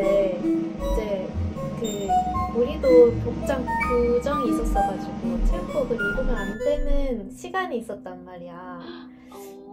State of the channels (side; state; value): both; identical; correlation 1.00